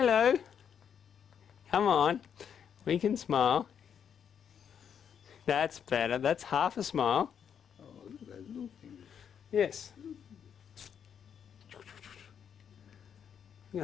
Come on. We can smile. That's better. That's half a smile. Oh, look at those little fingers. Yes. You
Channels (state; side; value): quieter; right; 8.0 dB